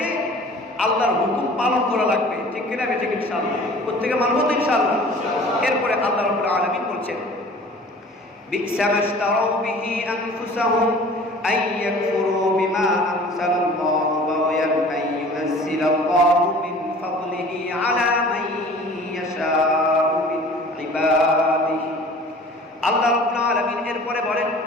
আল্লাহর হুকুম পালন করা লাগবে। ঠিক কিনা? ঠিক ইনশাআল্লাহ। প্রত্যেকে মানব তো ইনশাআল্লাহ। এরপরে আল্লাহ রাব্বুল আলামিন বলছেন, বি'সা মাশতারাউ বিহি আনফুসাহুম আন ইয়াকফুরু বিমা আনজালাল্লাহু বাগয়ান আন ইউনাজ্জিলাল্লাহু মিন ফাদলিহি আলা মান ইয়াশাউ মিন ইবাদিহি। আল্লাহ রাব্বুল আলামিন এরপরে বলেন,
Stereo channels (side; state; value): both; normal; correlation 0.46